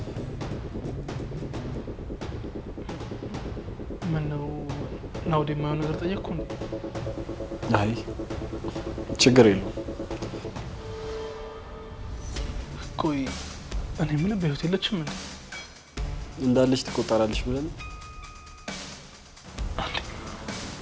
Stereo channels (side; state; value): both; identical; correlation 1.00